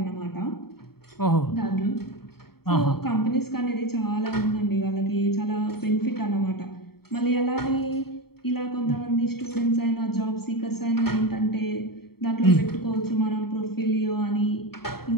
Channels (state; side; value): late; right; 0.95 ms